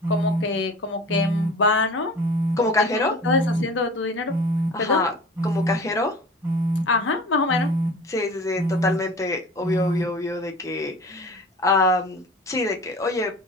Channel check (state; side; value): normal; both; correlation 0.40